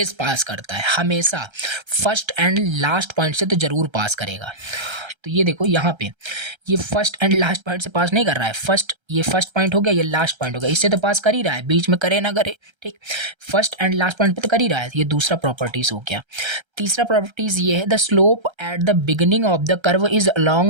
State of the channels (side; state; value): left; late; 1.3 ms